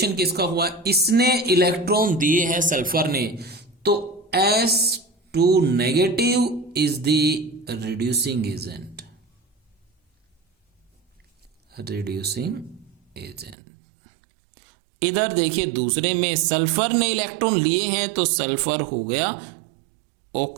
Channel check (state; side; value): drops out; left; at 13.6 s